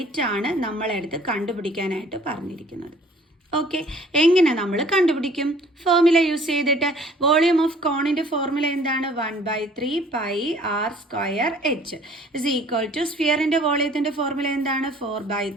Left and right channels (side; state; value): both; normal; correlation 0.54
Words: ആണ് നമ്മളെടുത്ത് കണ്ടുപിടിക്കാനായിട്ട് പറഞ്ഞിരിക്കുന്നത്. ഓക്കെ, എങ്ങനെ നമ്മൾ കണ്ടുപിടിക്കും? ഫോർമുല യൂസ് ചെയ്തിട്ട്. വോളിയം ഓഫ് കോണിന്റെ ഫോർമുല എന്താണ്? 1/3 πr² ഇസ് ഈക്വൽ ടു സ്ഫിയറിന്റെ വോളിയത്തിന്റെ ഫോർമുല എന്താണ്?